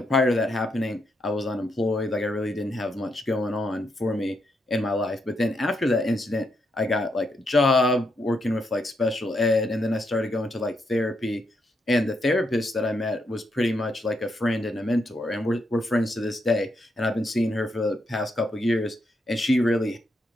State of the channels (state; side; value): normal; both; correlation 0.79